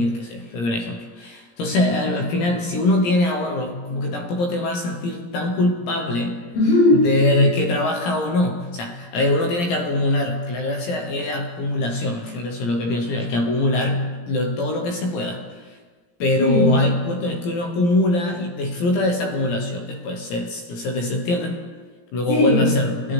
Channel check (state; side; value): late; right; 17 ms